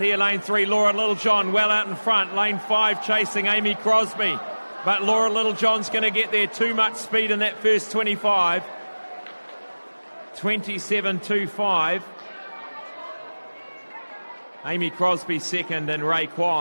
here, lane 3, Laura Littlejohn well out in front, lane 5 chasing Amy Crosby, but Laura Littlejohn's going to get there, too much speed in that first 25, 27.25. Amy Crosby second, and Ray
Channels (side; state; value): both; inverted; correlation -1.00